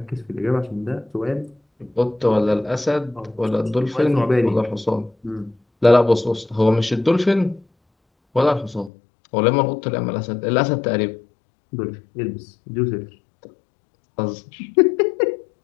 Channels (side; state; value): right; drops out; at 8.9 s